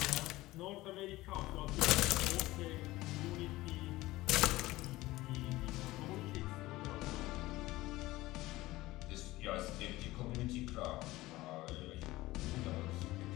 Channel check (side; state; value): right; quieter; 18.3 dB